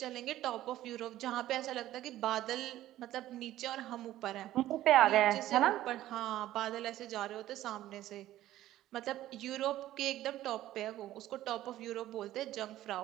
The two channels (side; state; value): left; quieter; 14.1 dB